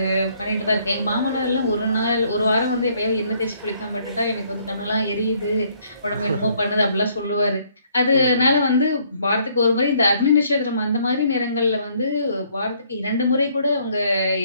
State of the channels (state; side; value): inverted; both; correlation -0.65